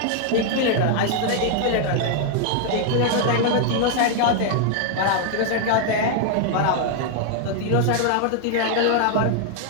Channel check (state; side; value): different; both; correlation 0.00